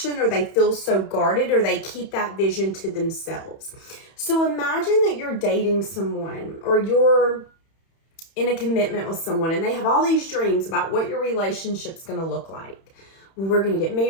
or they feel so guarded, or they keep that vision to themselves. So imagine that you're dating someone, or you're in a commitment with someone, and they have all these dreams about what your relationship's going to look like. Well, we're going to get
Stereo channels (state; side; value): late; right; 31 ms